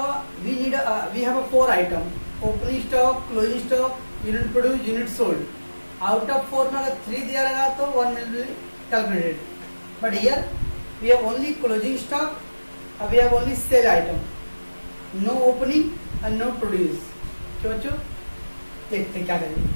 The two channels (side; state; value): both; inverted; correlation -1.00